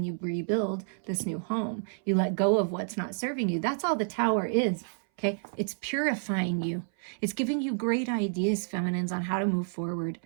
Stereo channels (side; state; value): left; silent; 58 dB below the other